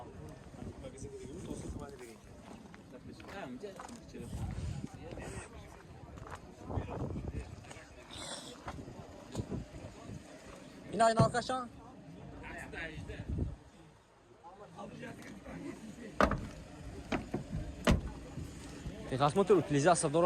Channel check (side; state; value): both; identical; correlation 1.00